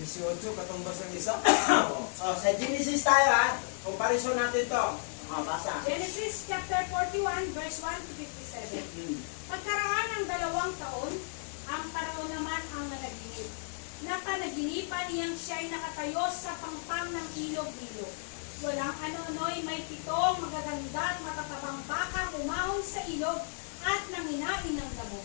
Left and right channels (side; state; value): right; silent; digital silence